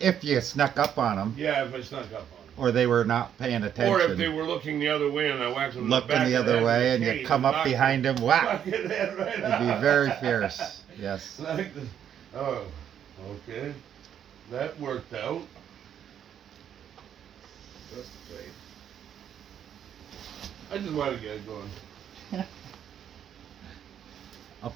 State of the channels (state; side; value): quieter; left; 9.3 dB